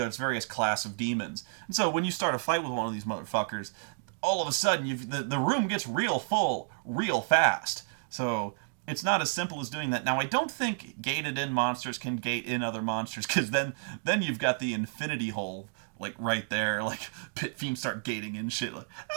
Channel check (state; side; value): silent; left; digital silence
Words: various class of demons. And so, when you start a fight with one of these motherfuckers, all of a sudden, the room gets real full real fast. So... it's not as simple as doing that. Now, I don't think gated-in monsters can gate in other monsters, because then you've got the infinity hole, like, right there. Like, pit fiends start gating in shit. Like,